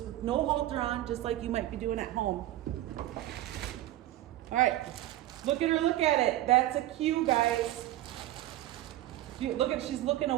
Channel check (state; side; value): quieter; left; 14.8 dB